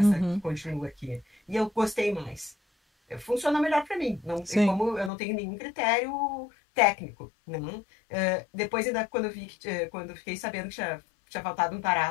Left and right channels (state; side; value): drops out; right; at 5.1 s